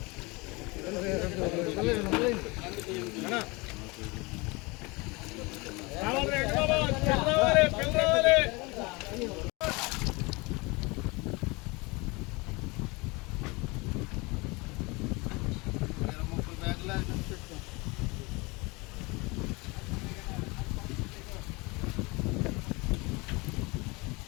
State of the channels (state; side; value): quieter; right; 25.8 dB